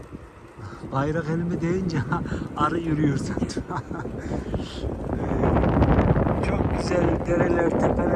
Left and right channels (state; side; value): identical; both; correlation 1.00